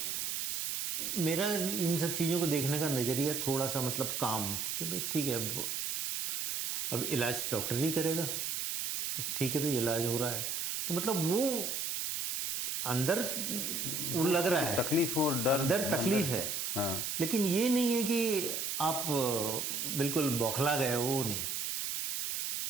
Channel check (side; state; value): right; noise; hiss, 1 dB below the sound